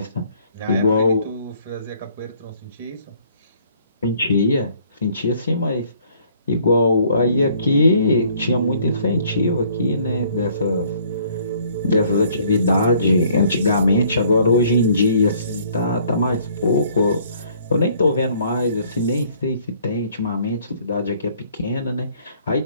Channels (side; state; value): both; inverted; correlation -0.61